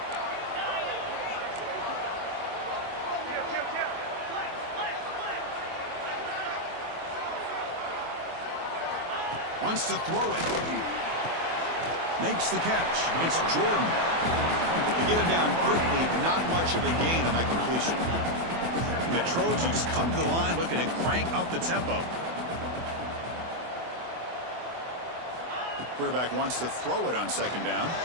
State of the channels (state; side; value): late; left; 24 ms